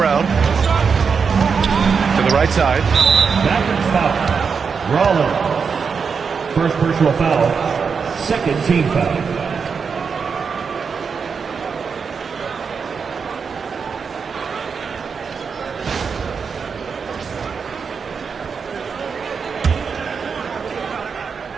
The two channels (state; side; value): quieter; left; 5.8 dB